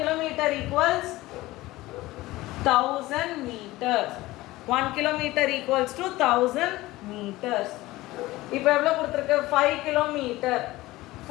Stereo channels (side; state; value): right; quieter; 18.4 dB